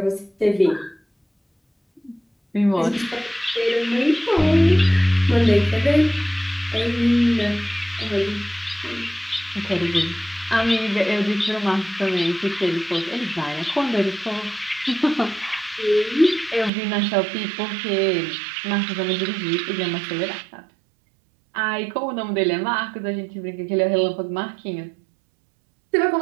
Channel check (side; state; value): left; drops out; at 16.7 s